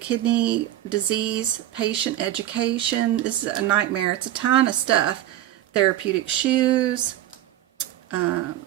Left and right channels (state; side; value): quieter; left; 13.5 dB